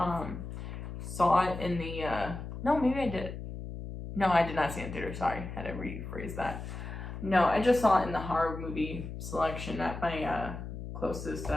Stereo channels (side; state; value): left; noise; hum, 8 dB below the sound